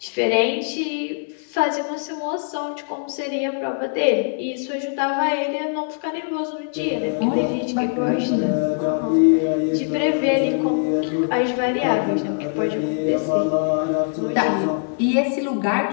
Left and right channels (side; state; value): right; silent; 63 dB below the other